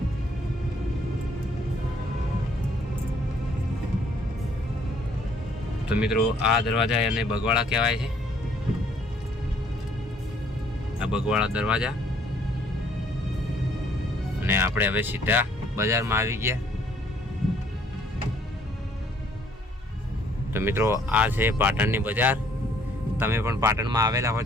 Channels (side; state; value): both; normal; correlation 0.63